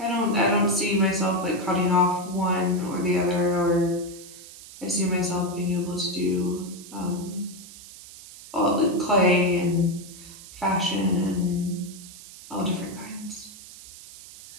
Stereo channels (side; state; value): right; noise; hiss, 17 dB below the sound